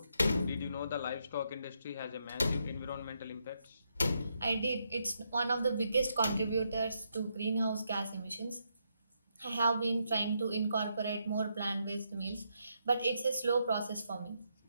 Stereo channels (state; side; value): inverted; both; correlation -0.79